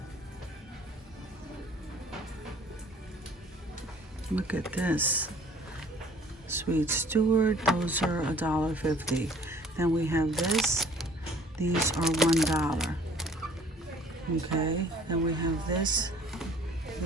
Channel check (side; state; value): both; normal; correlation 0.54